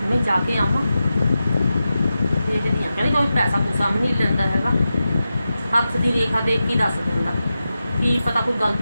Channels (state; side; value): inverted; both; correlation -0.91